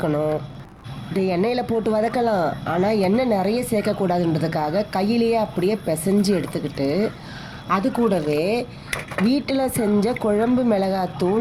இது எண்ணெயில் போட்டு வதக்கலாம், ஆனால் எண்ணெய் நிறைய சேர்க்கக்கூடாதுன்றதுக்காக கையிலேயே அப்படியே பிசைஞ்சு எடுத்துக்கிட்டு அது கூடவே வீட்டில் செஞ்ச குழம்பு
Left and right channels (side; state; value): both; identical; correlation 1.00